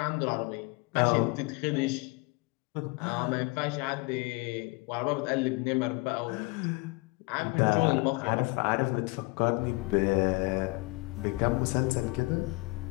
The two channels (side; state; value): right; quieter; 26.0 dB